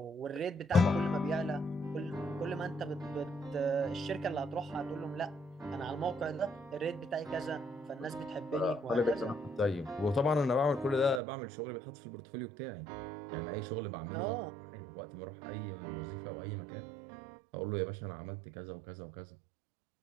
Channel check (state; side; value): drops out; left; at 11.2 s